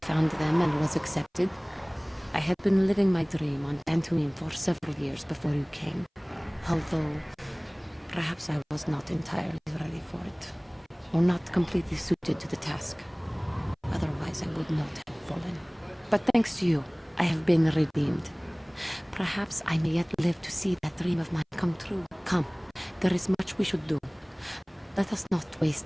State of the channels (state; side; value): identical; both; correlation 1.00